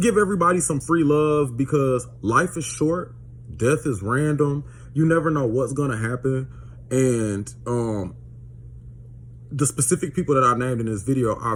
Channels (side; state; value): both; identical; correlation 1.00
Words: give everybody some free love because life is short. Death is random. You never know what's going to happen. And the specific people that I named in this video, I